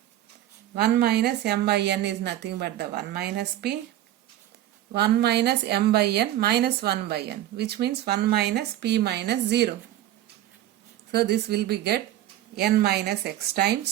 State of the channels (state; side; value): quieter; left; 13.2 dB